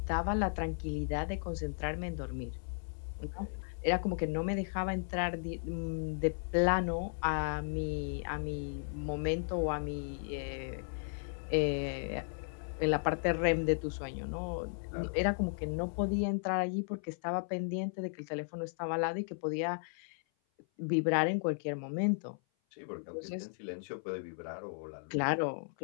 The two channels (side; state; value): right; silent; 54 dB below the other